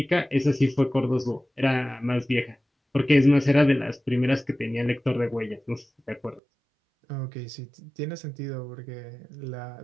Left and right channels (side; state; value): left; drops out; at 6.4 s